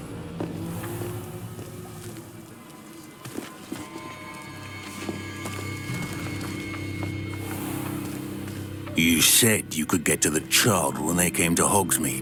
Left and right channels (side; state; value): both; identical; correlation 1.00